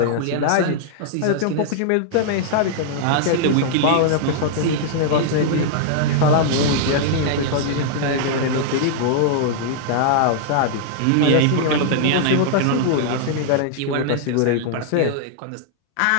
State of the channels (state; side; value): different; both; correlation -0.01